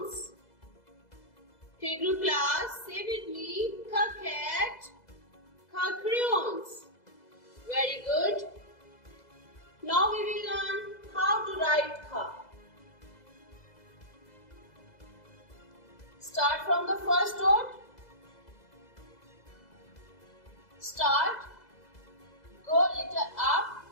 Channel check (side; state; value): right; late; 2.0 ms